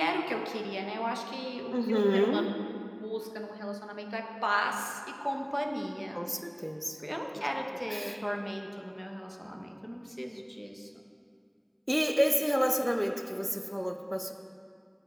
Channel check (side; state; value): both; identical; correlation 1.00